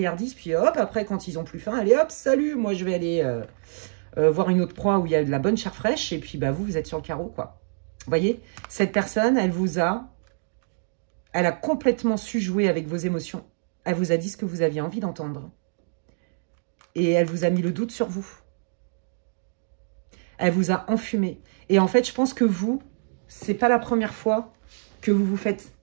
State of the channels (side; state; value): left; silent; digital silence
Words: puis hop, après, quand ils ont plus faim, allez hop, salut, moi je vais aller voir une autre proie où il y a de la bonne chair fraîche, et puis bah, vous êtes sur le carreau, quoi. Vous voyez, cette personne, elle a complètement su jouer avec vos émotions. Elle vous a dit ce que vous aviez envie d'entendre. Et elle vous a mis le doute sur vous. Elle vous a enfumé. Et en fait, je pense que vous, c'est pas la première fois que vous vous faites